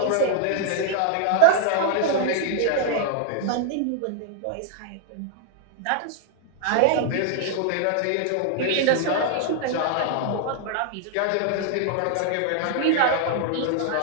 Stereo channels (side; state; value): both; different; correlation 0.00